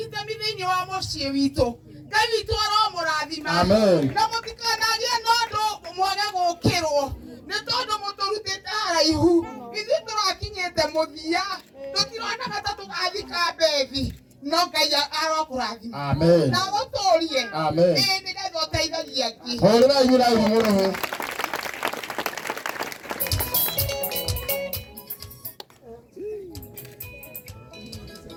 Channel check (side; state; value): both; identical; correlation 1.00